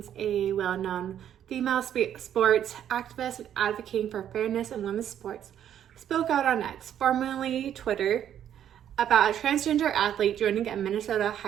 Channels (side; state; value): left; quieter; 10.1 dB